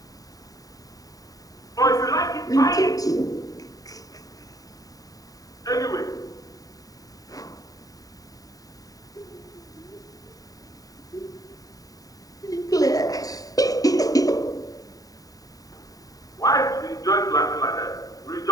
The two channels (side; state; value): right; late; 0.18 ms